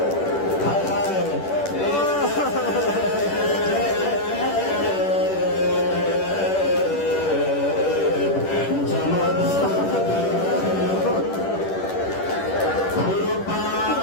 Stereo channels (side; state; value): right; late; 10 ms